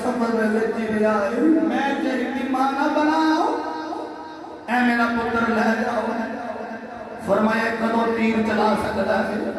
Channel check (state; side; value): identical; both; correlation 1.00